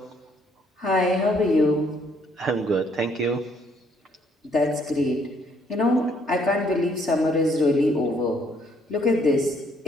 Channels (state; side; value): normal; both; correlation 0.67